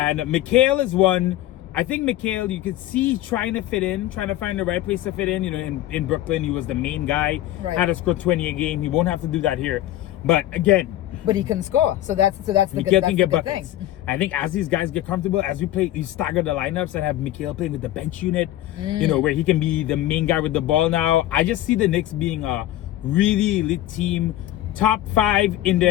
Mikhail is one. I think Mikhail, you could see trying to fit in, trying to find the right place to fit in. In Brooklyn, he was the main guy. Right. Had to score 20 a game. He won't have to do that here. But again, he can score. So that's the good thing. I think as these guys get comfortable, as we play, you stagger the lineups and have Mikhail playing with the bench unit. Where he can be the main guy with the ball now. I just see the Knicks being a really elite team. Top 5 in the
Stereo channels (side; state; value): right; quieter; 14.2 dB